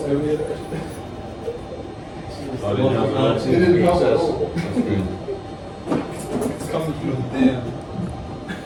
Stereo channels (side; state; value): both; identical; correlation 1.00